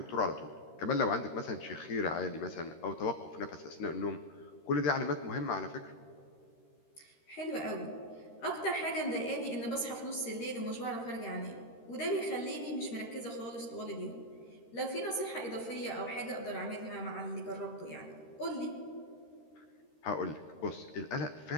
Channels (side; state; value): right; late; 13 ms